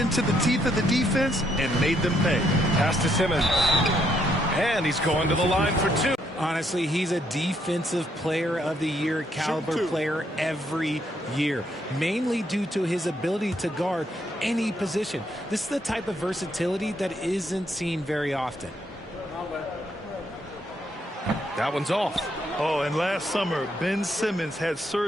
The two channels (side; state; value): both; normal; correlation 0.73